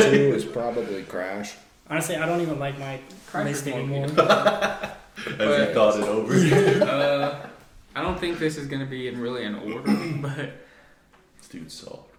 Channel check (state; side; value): identical; both; correlation 1.00